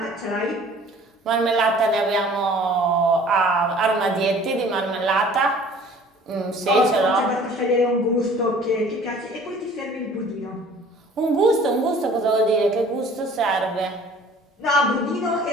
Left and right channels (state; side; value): normal; both; correlation 0.50